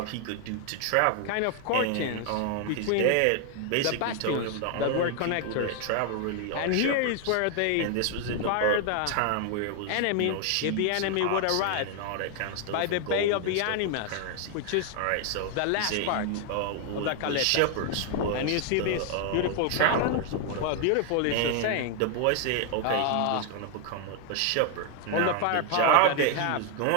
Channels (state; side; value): different; both; correlation 0.00